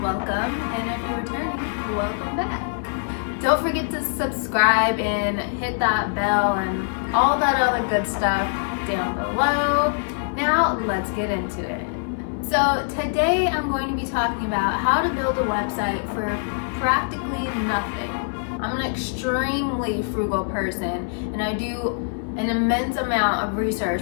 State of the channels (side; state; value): right; silent; digital silence